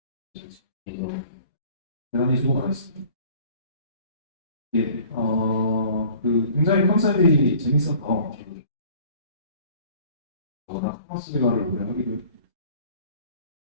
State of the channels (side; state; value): both; inverted; correlation -0.51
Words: 대단히 수고 많았습니다. 예, 굉장히 컨셉이 재밌어서 워낙 카스리가를 오래 하기도 했고